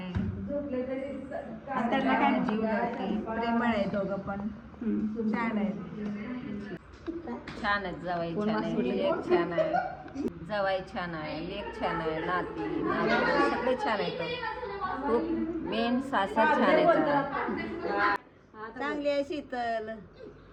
त्यांना काय जीव लावते, प्रेमळ आहे. दोघं पण छान आहे. छान आहेत. जावाई छान आहे, लेक छान आहे. जावाई छान आहे, लेक छान आहे, नाती सगळे छान आहेत. खूप मेन सासर छान आहेत. चांगली आहे शीतल.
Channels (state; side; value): identical; both; correlation 1.00